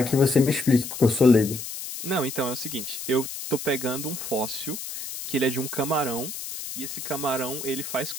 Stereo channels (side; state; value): left; noise; hiss, 8 dB below the sound